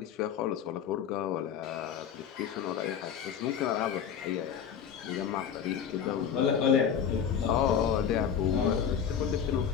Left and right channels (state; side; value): quieter; right; 8.0 dB